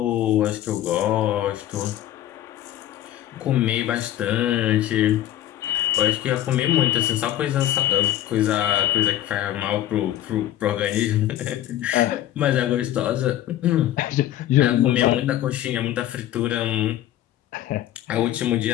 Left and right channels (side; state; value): right; quieter; 12.8 dB